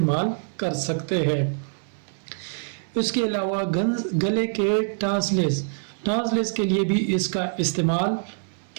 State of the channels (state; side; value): silent; left; digital silence